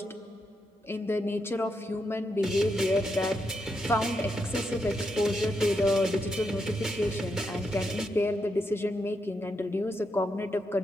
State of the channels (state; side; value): normal; both; correlation 0.82